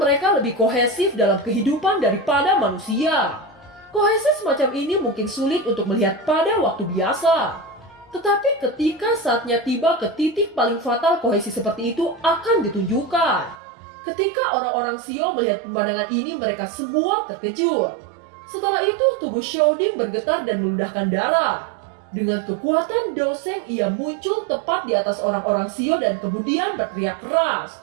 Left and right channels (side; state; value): left; drops out; at 13.6 s